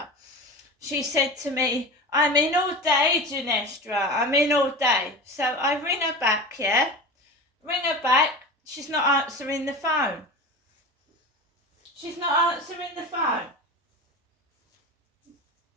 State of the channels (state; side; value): normal; both; correlation 0.30